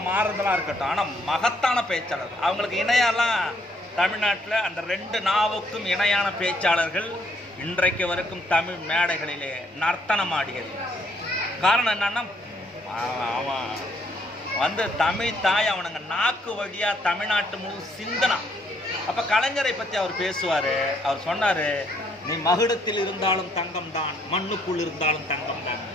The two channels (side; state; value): both; normal; correlation 0.68